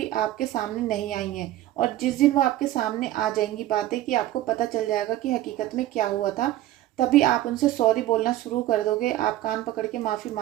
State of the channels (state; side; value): quieter; left; 14.4 dB